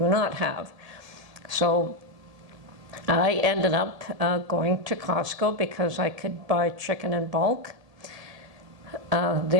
have. So I ended up going to Costco because I could buy chicken in bulk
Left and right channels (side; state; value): left; late; 1.7 ms